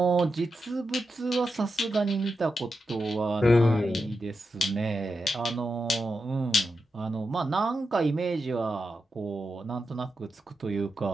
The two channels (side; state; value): both; normal; correlation 0.88